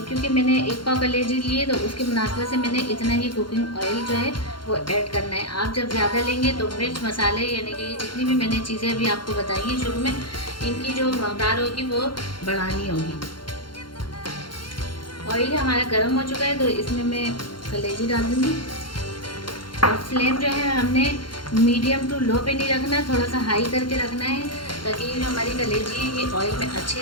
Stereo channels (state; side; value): late; right; 0.72 ms